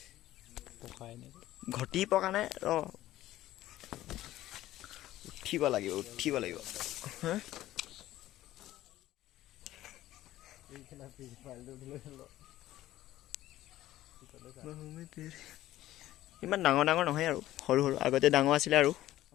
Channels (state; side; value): quieter; right; 14.7 dB